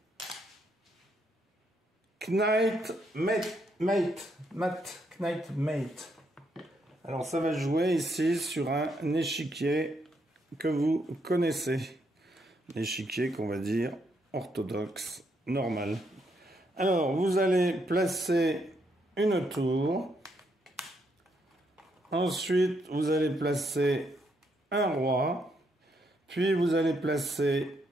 Knight Mate. Alors ça va jouer ici sur un échiquier que vous connaissez. L'échiquier qu'on va dire orthodoxe, normal. Alors vous allez placer une tour. Ensuite vous allez placer un roi, puis vous allez placer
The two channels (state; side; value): normal; both; correlation 0.76